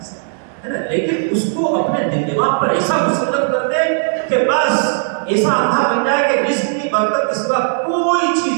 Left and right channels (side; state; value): left; silent; digital silence